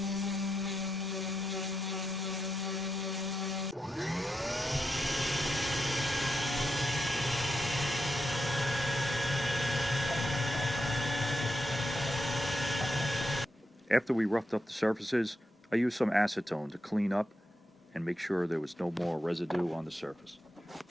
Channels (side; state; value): both; normal; correlation 0.85